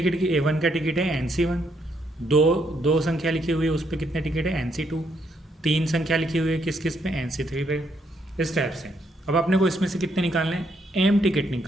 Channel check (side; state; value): both; normal; correlation 0.74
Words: की A1 का टिकट है NC1, दो संख्या लिखी हुई है उस पर कितने टिकट है NC2, 3 संख्या लिखी हुई है किस किस पे NC3 पे। इस टाइप से अब अपने को इसमें से कितने निकालने हैं, M टिकट